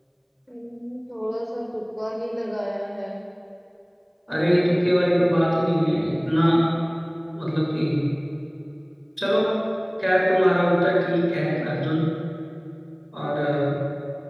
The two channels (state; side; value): identical; both; correlation 1.00